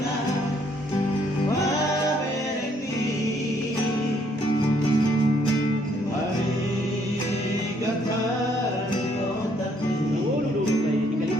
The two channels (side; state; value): both; normal; correlation 0.68